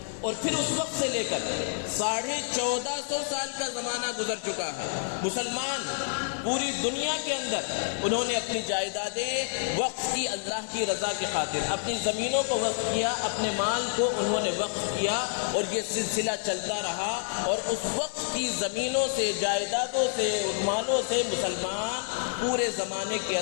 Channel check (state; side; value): silent; right; digital silence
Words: اور پھر اس وقت سے لے کر 1450 سال کا زمانہ گزر چکا ہے، مسلمان پوری دنیا کے اندر انہوں نے اپنی جائیدادیں وقف کی اللہ کی رضا کی خاطر، اپنی زمینوں کو وقف کیا، اپنے مال کو انہوں نے وقف کیا، اور یہ سلسلہ چلتا رہا، اور اس وقف کی زمینوں سے، جائیدادوں سے، مالوں سے مسلمان پورے زمانے کے